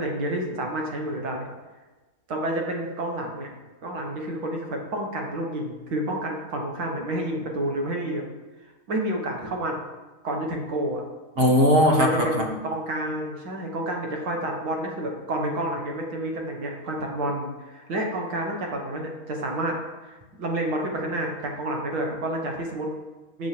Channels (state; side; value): late; left; 5.6 ms